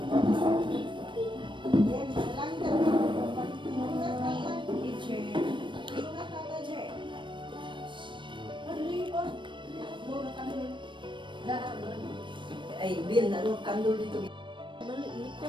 Ay, Bill, naroon kandol dito.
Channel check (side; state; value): left; late; 0.24 ms